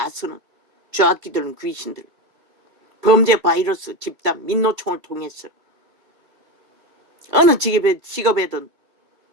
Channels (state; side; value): late; left; 3.3 ms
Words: 쓰는 좌악기들은 귀신들. 범죄 바이러스 집단 민노총을 통해서 어느 직업에든